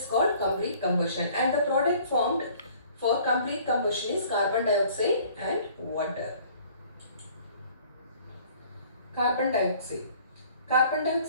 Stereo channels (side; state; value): both; inverted; correlation -0.54